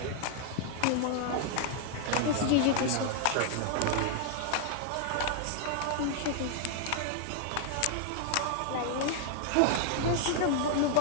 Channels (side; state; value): both; different; correlation 0.00